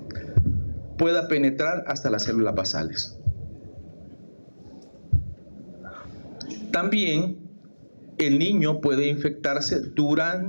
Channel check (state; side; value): inverted; both; correlation -1.00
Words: pueda penetrar hasta las células basales. También el niño puede infectarse